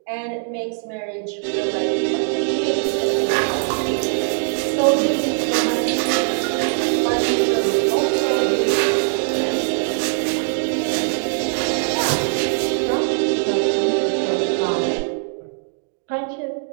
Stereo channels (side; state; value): left; silent; digital silence